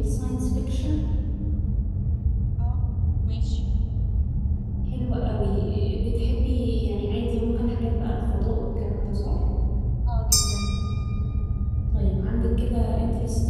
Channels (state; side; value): identical; both; correlation 1.00